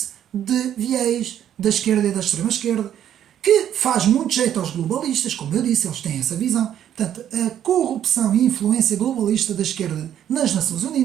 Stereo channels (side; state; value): left; quieter; 10.3 dB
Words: de viés da esquerda e da extrema-esquerda, que faz muito jeito aos globalistas, como eu disse, eles têm essa visão. Portanto, a corrupção e influência globalista da esquerda nas Nações